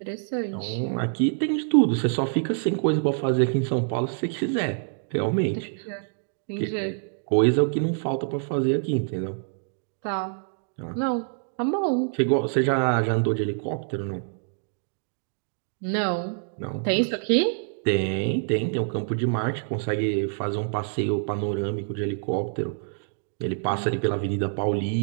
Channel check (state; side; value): silent; left; digital silence